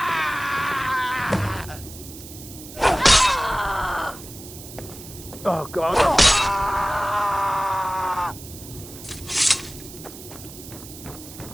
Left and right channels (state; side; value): noise; right; hiss, 15 dB below the sound